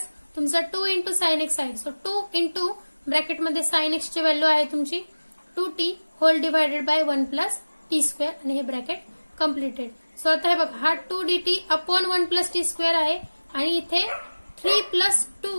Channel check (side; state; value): both; inverted; correlation -1.00